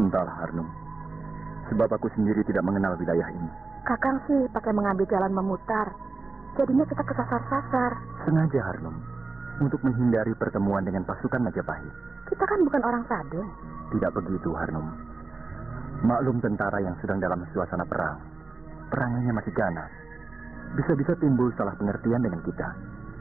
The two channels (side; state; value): left; quieter; 3.7 dB